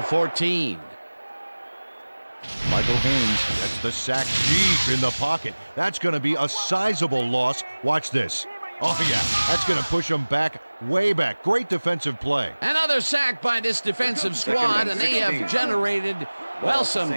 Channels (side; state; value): both; inverted; correlation -1.00